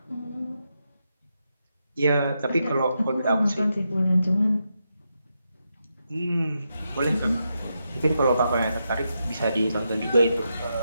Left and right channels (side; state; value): both; inverted; correlation -0.85